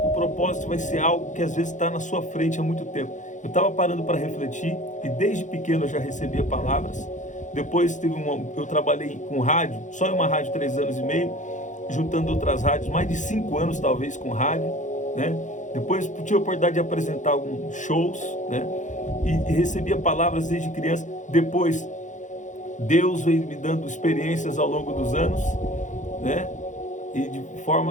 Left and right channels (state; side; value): late; right; 0.36 ms